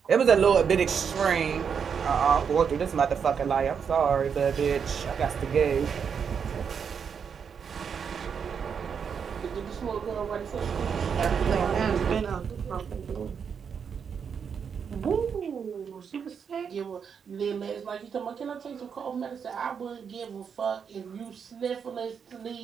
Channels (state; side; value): quieter; left; 6.8 dB